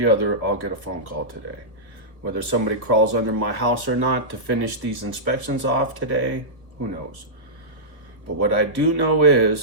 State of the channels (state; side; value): late; left; 1.2 ms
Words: other, I'll get a phone call today. Whether somebody crawls under my house or not to finish these inspections off today, who knows? But what I do know